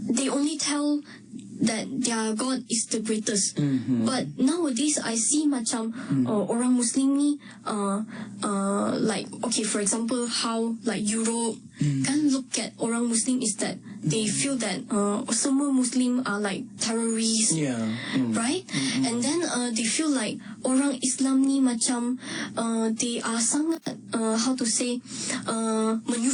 they only tell that their God is the greatest. But nowadays I see macam orang Muslim ni like, okay, for example, how like Europe kan look at orang Muslim is that they feel that semua Muslim are like terrorists, right? And then they feel like orang Islam ni macam they are sangat how to say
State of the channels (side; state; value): both; identical; correlation 1.00